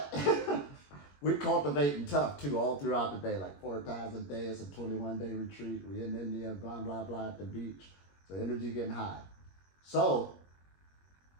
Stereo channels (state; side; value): late; right; 21 ms